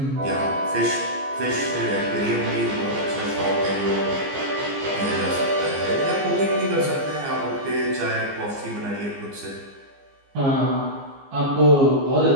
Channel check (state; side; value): late; left; 15 ms